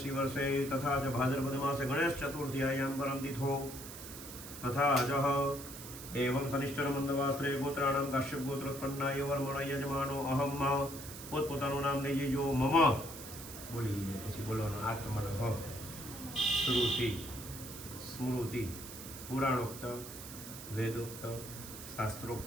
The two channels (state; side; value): noise; right; hiss, 12 dB below the sound